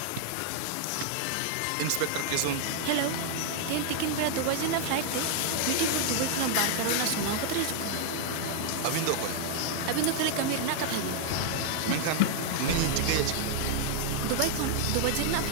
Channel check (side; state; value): both; different; correlation 0.00